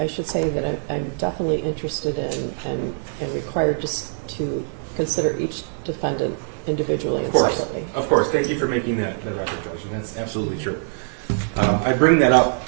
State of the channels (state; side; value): silent; left; digital silence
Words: should say that I'm definitely interested in and required just to consider each defendant individually. Of course, separately. of course. Thank you for making that record, Judge, and that's absolutely true. I bring that up